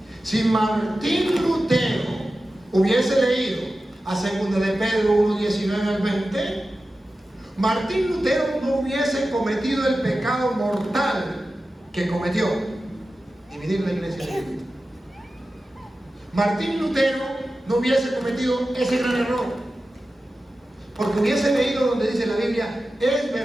Si Martín Lutero hubiese leído a 2 de Pedro 1:19 al 20, Martín Lutero no hubiese cometido el pecado mortal que cometió. Dividir la iglesia de Cristo. Martín Lutero no hubiese cometido ese gran error, porque hubiese leído donde dice la Biblia, es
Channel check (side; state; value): both; normal; correlation 0.94